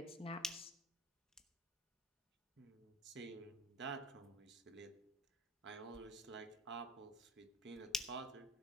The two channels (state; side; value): normal; both; correlation 0.33